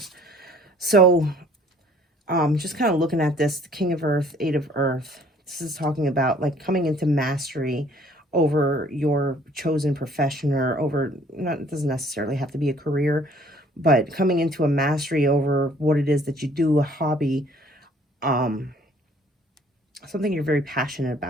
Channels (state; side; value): normal; both; correlation 0.58